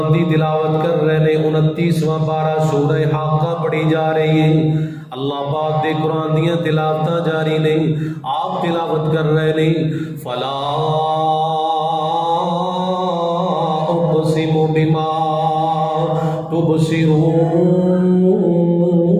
دی تلاوت کر رہے نے. 29واں پارہ سورہ حاقہ پڑھی جا رہی ہے. اللہ پاک دے قرآن دیاں تلاوتاں جاری نہیں، آپ تلاوت کر رہے نہیں. فلا اقسم بما تبصرون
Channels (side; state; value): both; identical; correlation 1.00